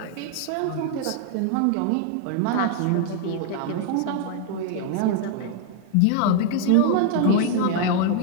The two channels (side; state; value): both; different; correlation 0.00